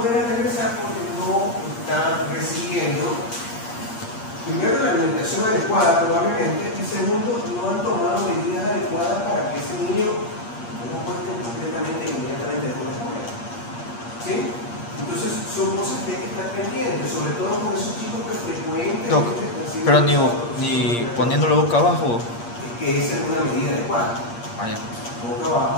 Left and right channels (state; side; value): late; right; 8.5 ms